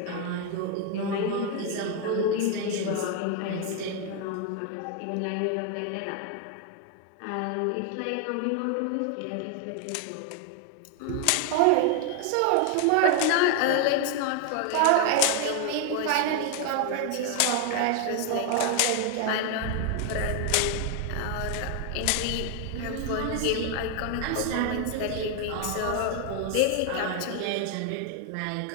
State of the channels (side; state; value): both; different; correlation 0.01